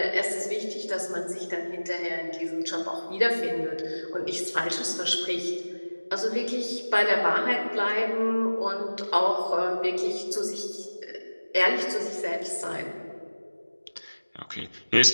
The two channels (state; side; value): inverted; both; correlation -1.00